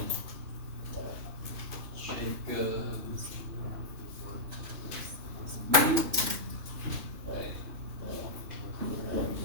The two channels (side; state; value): left; late; 2.9 ms